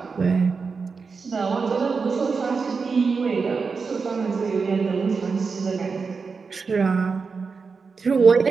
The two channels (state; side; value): quieter; left; 5.0 dB